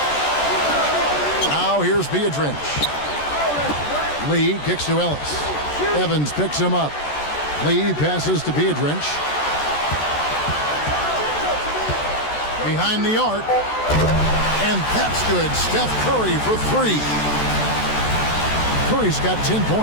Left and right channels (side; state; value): right; late; 14 ms